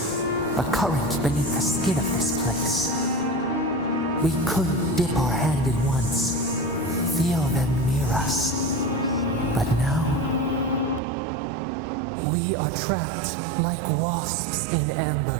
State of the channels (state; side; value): drops out; left; at 11.0 s